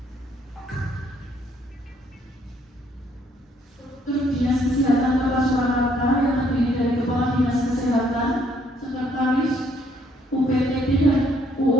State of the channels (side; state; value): both; normal; correlation 0.67